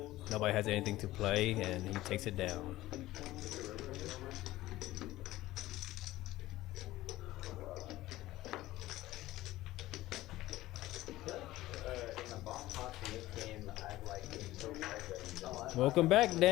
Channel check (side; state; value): right; quieter; 16.6 dB